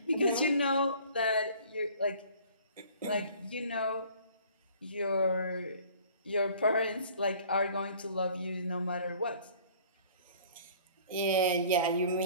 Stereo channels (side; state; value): both; inverted; correlation -0.51